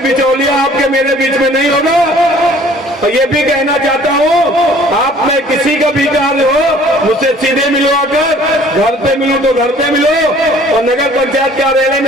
आपके मेरे बीच में नहीं होगा। और ये भी कहना चाहता हूँ, आप में किसी का भी कार्य हो मुझसे सीधे मिलो, आकर घर पे मिलो तो घर पे मिलो, और नगर पंचायत कार्यालय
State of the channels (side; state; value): both; normal; correlation 0.53